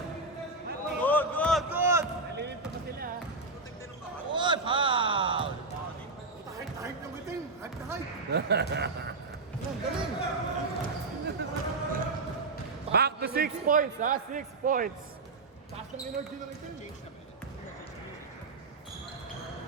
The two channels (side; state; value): left; quieter; 3.4 dB